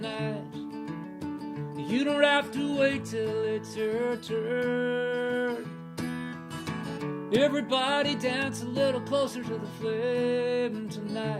You don't have to wait till it's your turn. Everybody dance a little closer to the flame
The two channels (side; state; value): both; identical; correlation 1.00